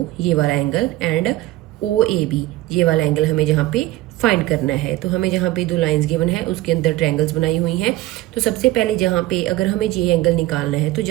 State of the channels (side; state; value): left; quieter; 16.9 dB